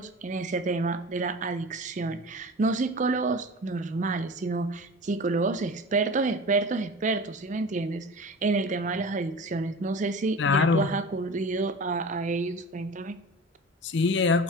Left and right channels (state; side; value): normal; both; correlation 0.35